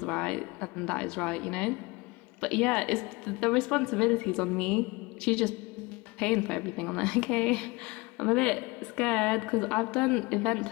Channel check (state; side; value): quieter; right; 24.4 dB